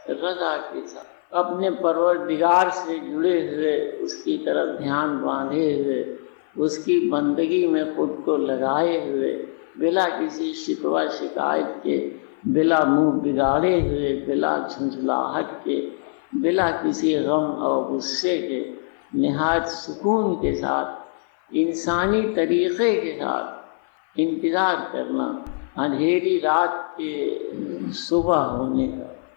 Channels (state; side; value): silent; right; 56 dB below the other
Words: اپنے پروردگار سے جڑے ہوئے، اس کی طرف دھیان باندھے ہوئے، اس کی بندگی میں خود کو لگائے ہوئے، بلا کسی شکوہ شکایت کے، بلا منہ بگاڑے ہوئے، بلا جھنجھلاہٹ کے، بلا کسی غم اور غصے کے، نہایت سکون کے ساتھ، انسانی طریقے کے ساتھ انتظار کرنا اندھیری رات کے صبح ہونے کا.